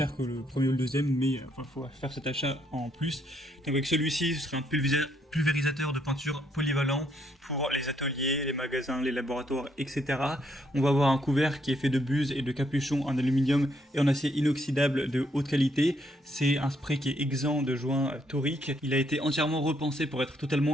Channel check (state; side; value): normal; both; correlation 0.73